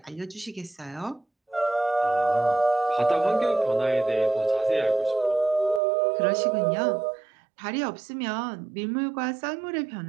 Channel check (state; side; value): drops out; left; at 5.8 s